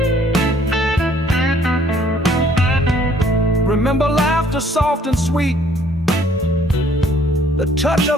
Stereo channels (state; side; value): normal; both; correlation 0.61